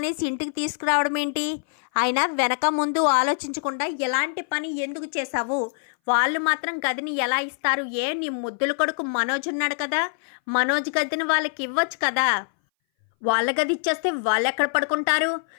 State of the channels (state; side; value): silent; right; 59 dB below the other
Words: ఇంటికి తీసుకురావడం ఏంటి? అయినా వెనక ముందు ఆలోచించకుండా ఎలాంటి పని ఎందుకు చేశావు? వాళ్ళు మాత్రం గదిని ఎలా ఇస్తారు? నీ ముద్దుల కొడుకు మనోజ్ ఉన్నాడు కదా, మనోజ్ గదిని వాళ్ళకి ఇవ్వచ్చు కదా. వాళ్ళ గది ఇచ్చేస్తే వాళ్ళు ఎక్కడ పడుకుంటారు?